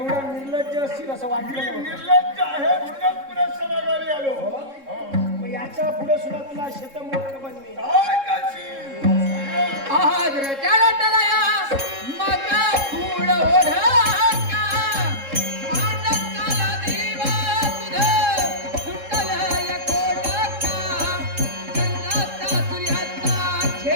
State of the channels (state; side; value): late; left; 3.7 ms